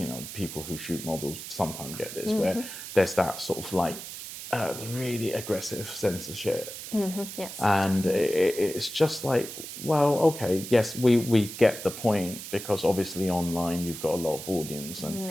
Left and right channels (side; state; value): right; noise; hiss, 10 dB below the sound